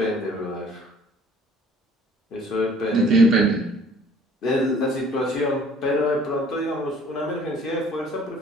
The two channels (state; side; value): normal; both; correlation 0.54